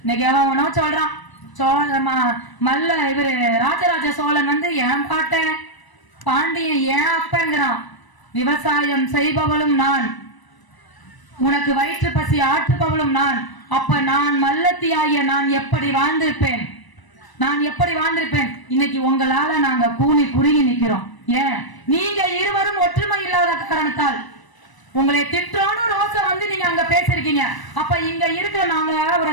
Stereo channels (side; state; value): right; late; 1.0 ms